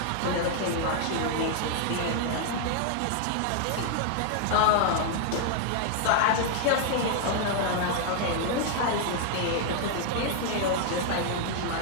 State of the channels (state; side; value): different; both; correlation 0.00